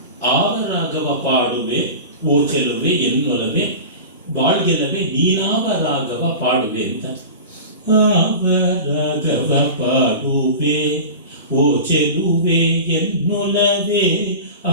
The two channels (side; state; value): both; inverted; correlation -0.32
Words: ಆವ ರಾಗವ ಪಾಡುವೆ ಓ ಚೆಲುವೆ ಎನ್ನೊಲವೆ ಬಾಳ್ಗೆಲವೆ ನೀನಾವ ರಾಗವ ಪಾಡುವೆ ಅಂತ. ಆವ ರಾಗವ ಪಾಡುವೆ ಓ ಚೆಲುವೆ ಎನ್ನೊಲವೆ